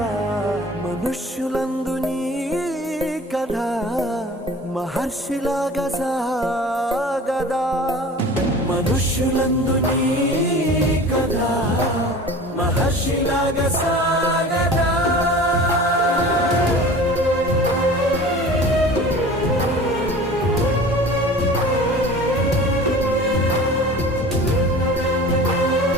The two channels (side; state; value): both; normal; correlation 0.40